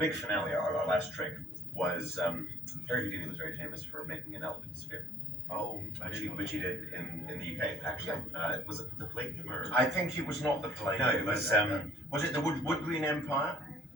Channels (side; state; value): both; normal; correlation 0.58